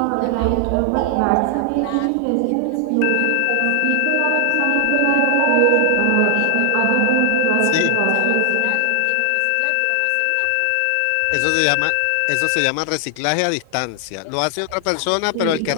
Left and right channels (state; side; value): different; both; correlation 0.00